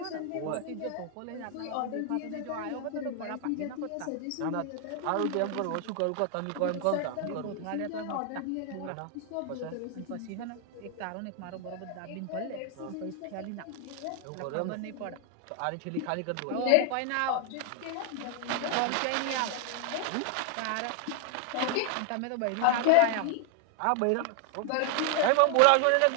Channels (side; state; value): both; different; correlation 0.00